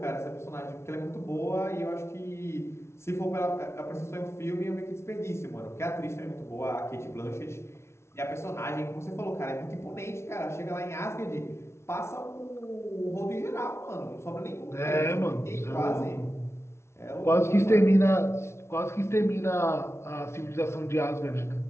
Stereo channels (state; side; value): late; right; 0.13 ms